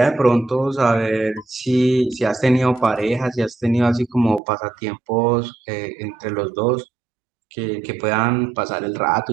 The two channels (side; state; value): left; drops out; at 4.4 s